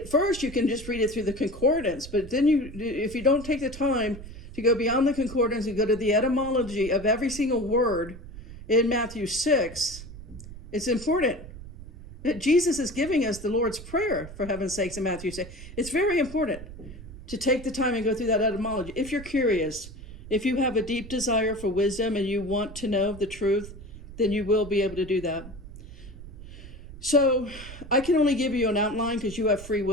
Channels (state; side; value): noise; right; rumble, 14 dB below the sound